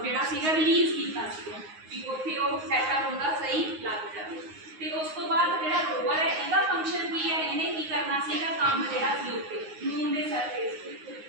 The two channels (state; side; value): late; left; 9.6 ms